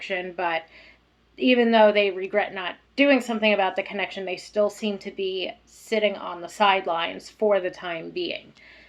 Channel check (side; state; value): both; identical; correlation 1.00